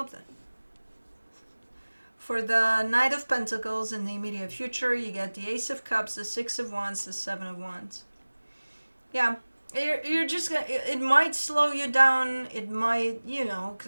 For the Knight of Pentacles in the immediate future, you get the Ace of Cups, the Six of Wands, the Seven of Wands. Yeah, you're just gonna, it might slow you down. It might,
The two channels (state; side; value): inverted; both; correlation -1.00